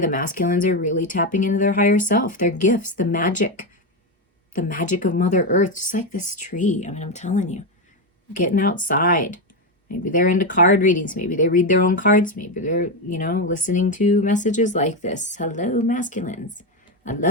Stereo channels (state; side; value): normal; both; correlation 0.10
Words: masculines are really tapping into their higher self, their gifts, the magic of Mother Earth, just like this tree. I mean, I'm telling you, getting outside. Maybe they're into card readings. Maybe they read their own cards. Maybe they're, listening to messages like this. Hello, masculines. I